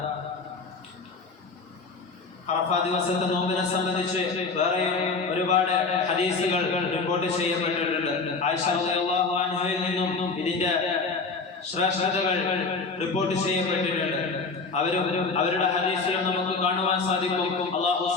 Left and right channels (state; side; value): quieter; right; 4.3 dB